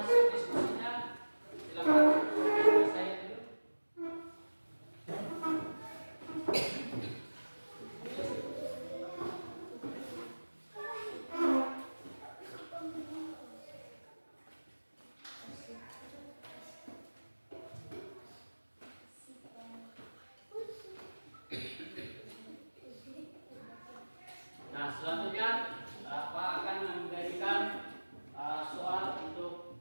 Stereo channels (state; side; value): inverted; both; correlation -1.00